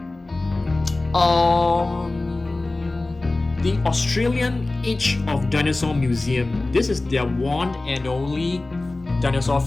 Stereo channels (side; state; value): right; quieter; 3.0 dB